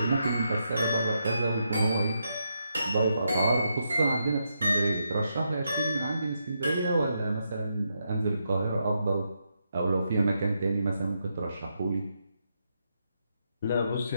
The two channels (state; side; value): inverted; both; correlation -0.82